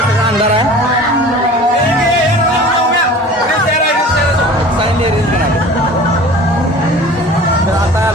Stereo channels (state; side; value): normal; both; correlation 0.42